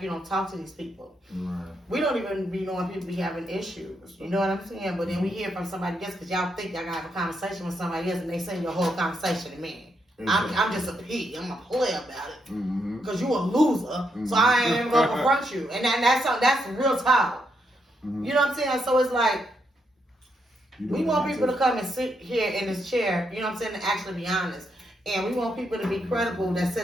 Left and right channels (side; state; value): both; normal; correlation 0.79